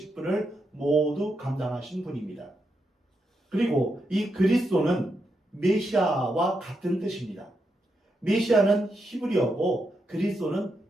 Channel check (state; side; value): normal; both; correlation 0.83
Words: 모두 감당하신 분입니다. 그리고 이 그리스도는 메시아와 같은 뜻입니다. 메시아는 히브리어고 그리스도는